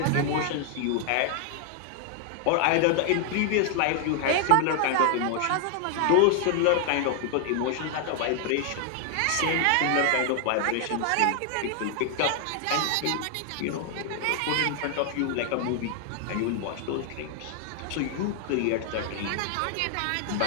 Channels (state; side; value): different; both; correlation 0.00